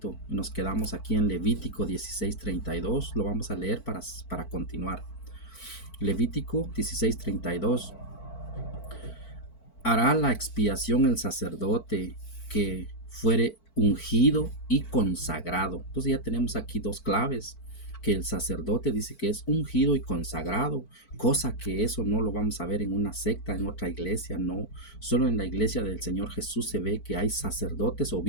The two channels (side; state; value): right; late; 4.5 ms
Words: Nos quedamos aquí en Levítico 16:32, lo vamos a leer para continuar. Levítico 16:32. Hará la expiación el sacerdote que fuere ungido y consagrado. Entonces ya tenemos aquí dos claves, que el sacerdote dice que es ungido y consagrado, cosa que eso no lo vamos a ver en una secta, en otra iglesia, no. Solo en la iglesia del Señor Jesús se ve que hay sacerdotes,